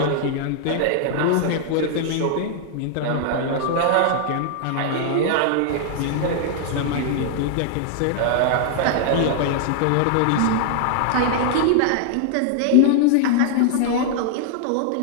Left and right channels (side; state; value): both; different; correlation 0.00